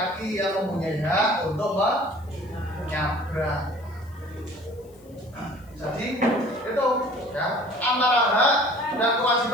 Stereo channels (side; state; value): left; noise; hiss, 30 dB below the sound